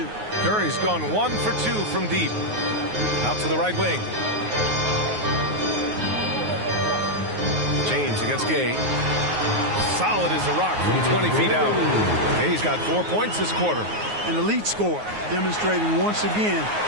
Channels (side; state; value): left; late; 9.5 ms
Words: Curry's gone 1 for 2 from deep. Out to the right wing. James against Gay. Solid as a rock from 20 feet out. Gay's got 4 points this quarter. An elite scorer, demonstrating once again